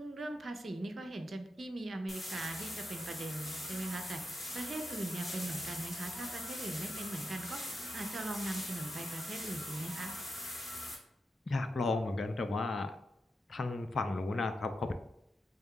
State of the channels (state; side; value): normal; both; correlation 0.87